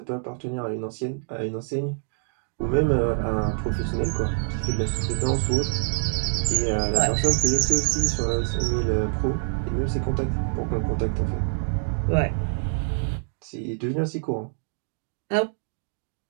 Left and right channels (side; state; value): left; silent; digital silence